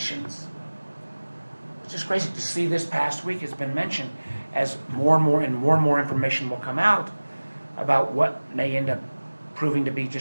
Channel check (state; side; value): inverted; both; correlation -1.00